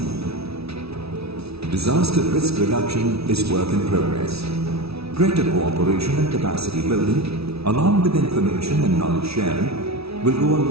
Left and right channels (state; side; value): late; left; 0.77 ms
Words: Disaster risk reduction is work in progress. Greater cooperation and capacity building, along with information and knowledge sharing, will go a